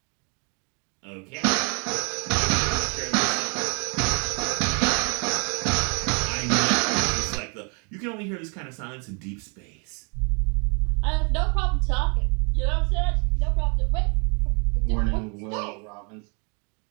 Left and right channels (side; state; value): left; quieter; 35.8 dB